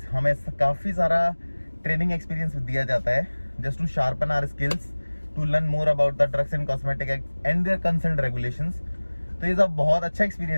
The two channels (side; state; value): both; inverted; correlation -1.00